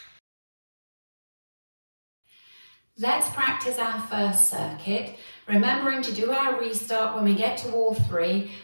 Let's practice our first circuit, remembering to do our restart when we get to wall 3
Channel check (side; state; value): both; inverted; correlation -1.00